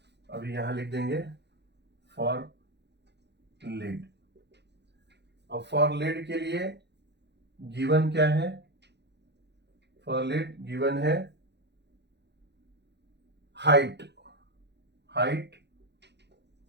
अभी यहां लिख देंगे फॉर लीड। अब फॉर लीड के लिए गिवन क्या है, फॉर लीड गिवन है हाइट, हाइट,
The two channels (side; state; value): left; late; 0.50 ms